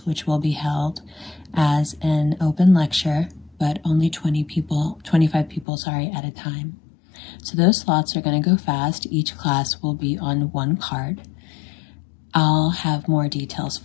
which will be held as an open lecture, but only 25 people, at a time. So those slots are going to go fast. Each class will be on 1 card. I'll have more details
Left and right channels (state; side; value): drops out; right; at 5.7 s